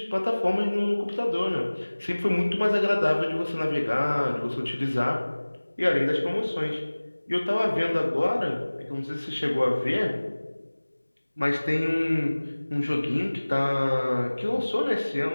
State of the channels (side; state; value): both; inverted; correlation -1.00